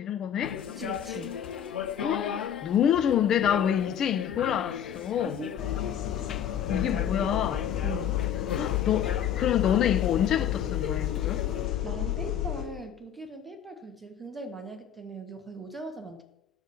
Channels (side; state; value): right; quieter; 9.1 dB